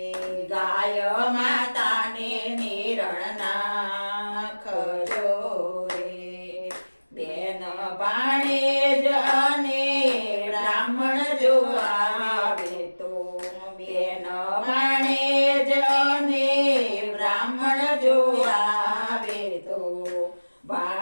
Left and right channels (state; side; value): inverted; both; correlation -1.00